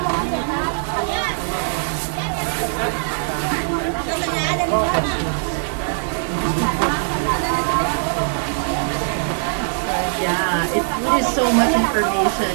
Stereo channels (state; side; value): silent; left; digital silence